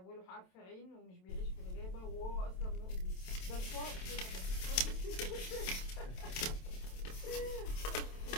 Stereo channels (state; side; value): late; right; 27 ms